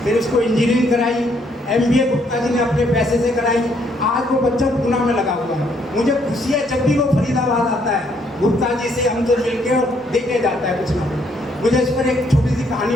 फिर उसको इंजीनियरिंग कराई, MBA गुप्ता जी ने अपने पैसे से कराई। आज वो बच्चा पूना में लगा हुआ है। मुझे खुशी है जब भी वो फरीदाबाद आता है, गुप्ता जी से हमसे मिलके और देके जाता है कुछ ना कुछ। मुझे इस पर एक छोटी सी कहानी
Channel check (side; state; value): both; normal; correlation 0.70